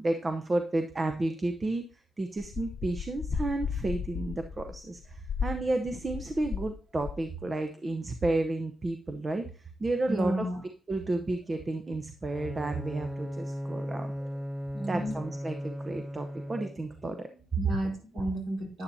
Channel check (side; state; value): both; normal; correlation 0.89